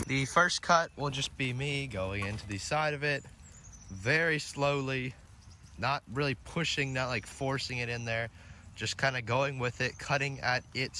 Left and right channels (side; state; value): both; identical; correlation 1.00